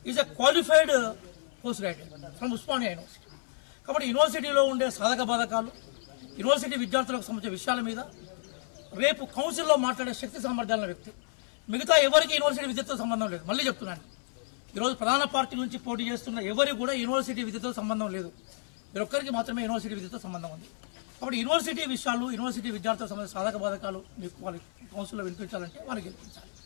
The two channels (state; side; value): silent; right; 57 dB below the other